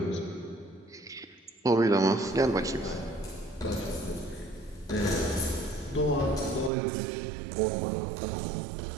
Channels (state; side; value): drops out; left; at 6.7 s